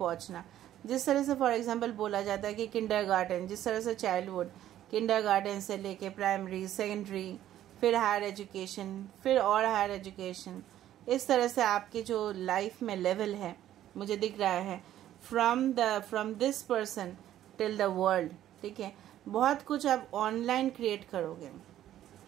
जिस तरह से फॉर एग्जांपल बोला जाता है कि किंडरगार्टन, जिस तरह से चाइल्डहुड, किंडरगार्टन से लेके प्राइमरी, सेकेंडरी, फिर हायर एजुकेशन, फिर और हायर एजुकेशन, इस तरह से आपकी जो लाइफ में लेवल है मुझे दिख रहा है from this person till the world. ठीक है, बहुत कुछ आप ऑनलाइन क्रिएट करोगे,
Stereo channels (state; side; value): quieter; left; 12.2 dB